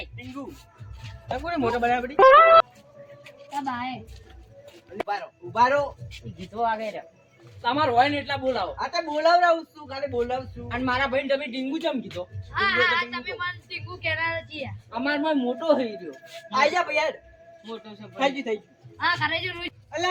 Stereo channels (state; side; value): identical; both; correlation 1.00